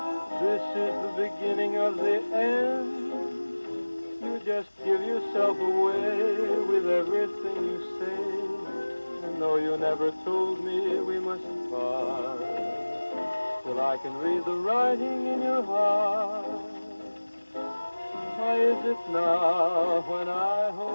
This is the beginning of the end. You just give yourself away with everything you say. And though you never told me we mustn't part, still I can read the writing in your heart. Why is it now when I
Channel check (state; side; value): inverted; both; correlation -1.00